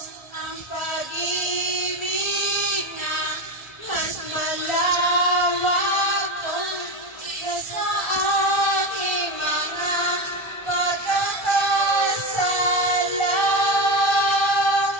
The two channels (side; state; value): right; late; 1.3 ms